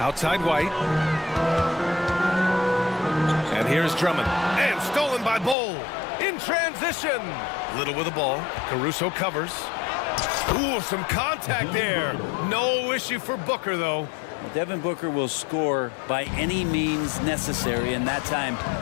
Outside White. And here's Drummond. And stolen by Bowl. In transition. Little with the ball. Caruso covers. Ooh, some contact there. No issue for Booker, though. Devin Booker will score by any means necessary, and that time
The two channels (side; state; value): right; drops out; at 5.6 s